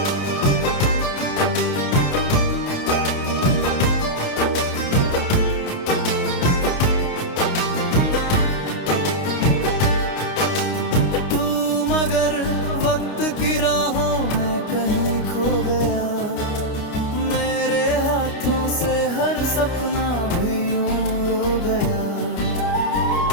तू मगर वक्त की राहों में कहीं खो गया। मेरे हाथों से हर सपना भी यूं रो गया।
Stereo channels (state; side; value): late; right; 29 ms